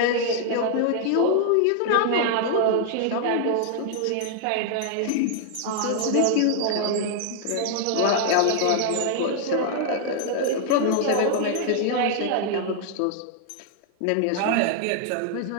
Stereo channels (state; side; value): different; both; correlation -0.01